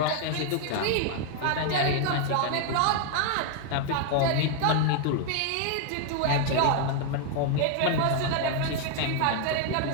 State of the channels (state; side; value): different; both; correlation 0.00